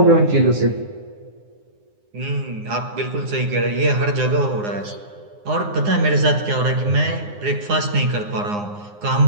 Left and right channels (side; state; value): left; late; 9.7 ms